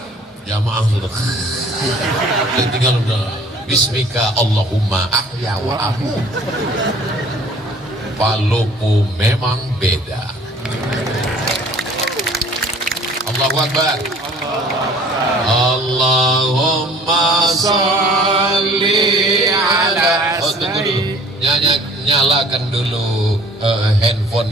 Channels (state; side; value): normal; both; correlation 0.52